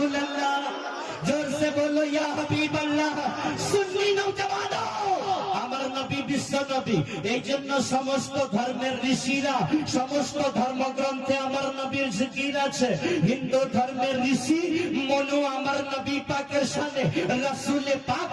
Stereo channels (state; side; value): identical; both; correlation 1.00